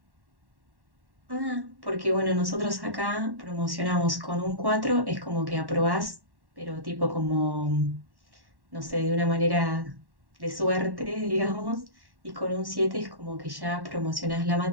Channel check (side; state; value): left; late; 1.1 ms